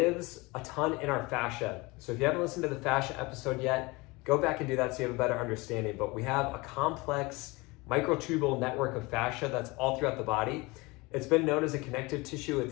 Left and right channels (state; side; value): quieter; right; 24.1 dB